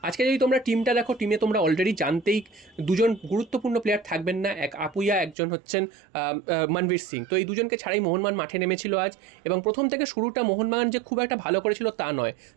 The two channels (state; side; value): drops out; left; at 5.4 s